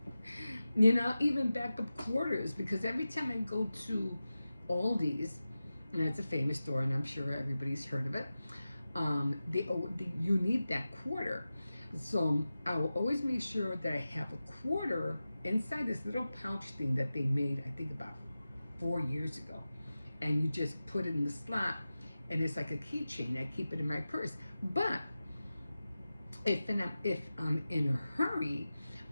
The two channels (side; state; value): both; inverted; correlation -0.94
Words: Even backup quarters, because every time I go to Aldi's, and it's a famous store, and I'm sure everybody's heard of it. You need that quarter, so I will always make sure that I have a quarter inside this little pouch thing that they made, I think about 4 years ago, and you just put it in the slot, and it's like a keychain. I keep it in my purse, but if I'm in a hurry,